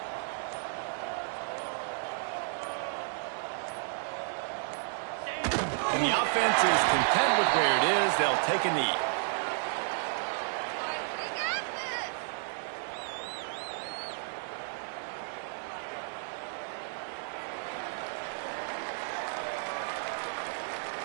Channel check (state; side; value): silent; left; digital silence